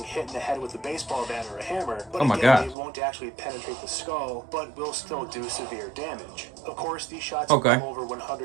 hit in the head with a baseball bat or a hammer, but Oh my again, God. it won't actually penetrate the skull, but will still do severe damage. Of course, these shots Okay. come over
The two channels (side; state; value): left; drops out; at 2.8 s